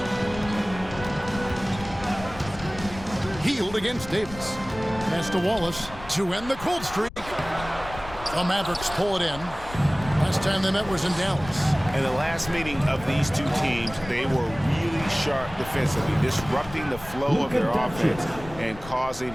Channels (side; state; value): left; noise; rumble, 14 dB below the sound